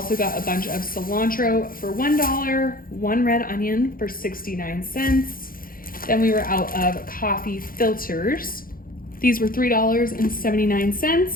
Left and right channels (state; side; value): late; right; 0.42 ms